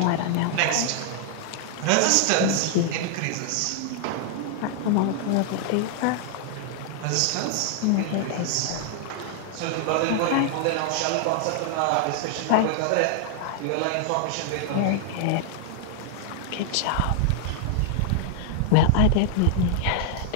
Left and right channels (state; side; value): different; both; correlation 0.00